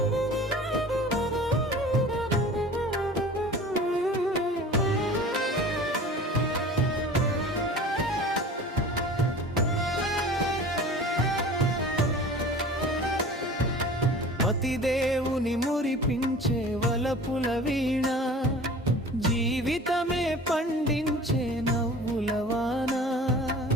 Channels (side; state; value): both; normal; correlation 0.41